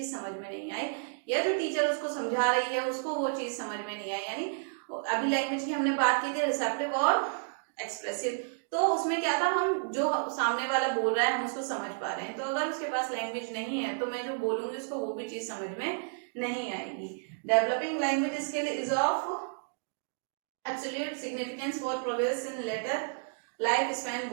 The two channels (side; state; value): left; silent; digital silence